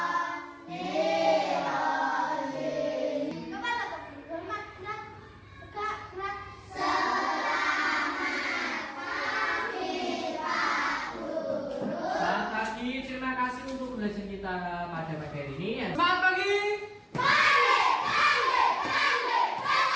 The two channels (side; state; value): both; identical; correlation 1.00